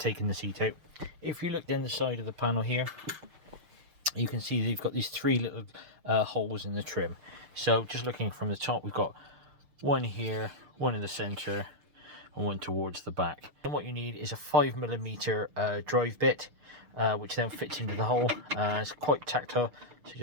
the seat out. If you look down the side of the panel here, you can see they've got these three little holes in the trim. So just looking from the top, we've got one here, one in the center, and one towards the back. And what you need is a 5mm drive bit, which then fits into the hole. It's quite tactile, so you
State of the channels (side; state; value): left; late; 6.6 ms